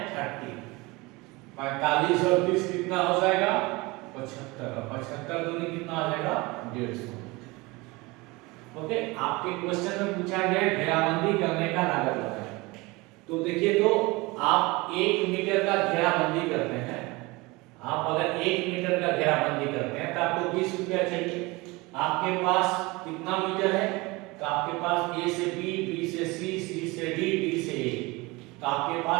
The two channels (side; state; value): left; quieter; 23.6 dB